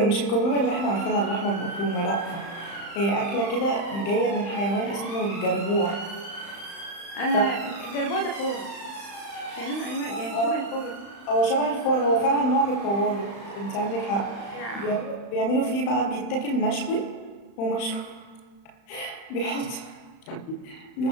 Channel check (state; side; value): late; right; 35 ms